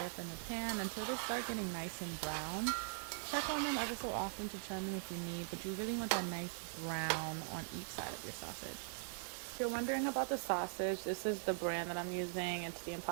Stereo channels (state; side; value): silent; left; digital silence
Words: up in the pan until they start getting nice and brown. Check on them ever so often to turn them if you need, but you really want that nice brown on each side of your sausage. If you're wondering about the sausage, this is the brand that I'm using. It's the